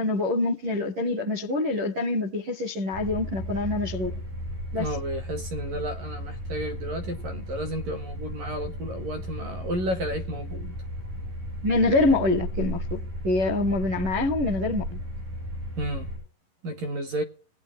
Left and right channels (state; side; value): late; left; 11 ms